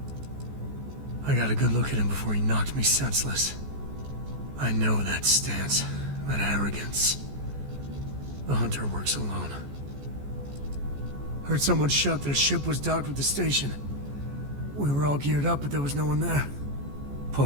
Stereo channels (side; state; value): left; late; 14 ms